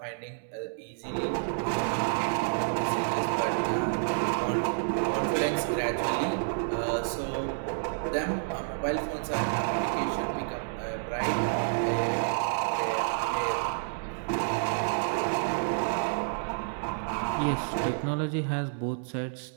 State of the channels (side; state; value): left; silent; digital silence